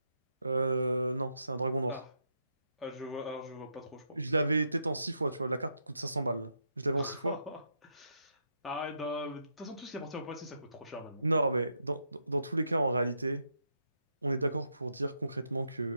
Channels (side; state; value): both; inverted; correlation -0.80